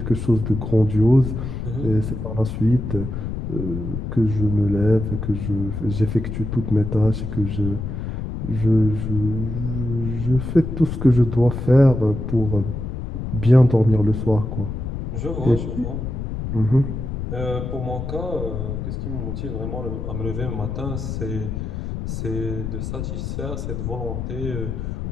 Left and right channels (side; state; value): left; noise; rumble, 5 dB below the sound